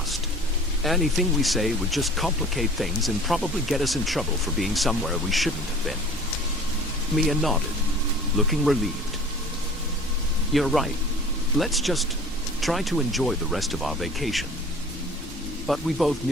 Anything we say would just complicate things and probably get us in trouble for being somewhere we shouldn't have been." Mia nodded, looking relieved. "You're right. Let's just try to enjoy the rest of our vacation." But we both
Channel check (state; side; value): normal; both; correlation 0.45